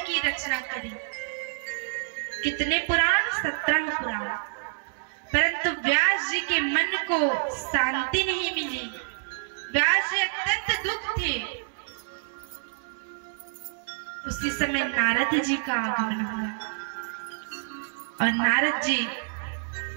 की रचना करी। कितने पुराण? 17 पुराण। परंतु व्यास जी के मन को शांति नहीं मिली। व्यास जी अत्यंत दुख थे। उसी समय नारद जी का आगमन हुआ और नारद जी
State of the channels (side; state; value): left; silent; 60 dB below the other